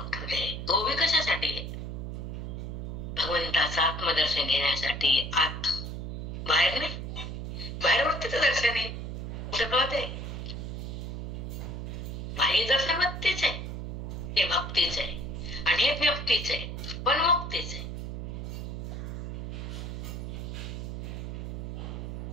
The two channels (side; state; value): right; noise; hum, 5 dB below the sound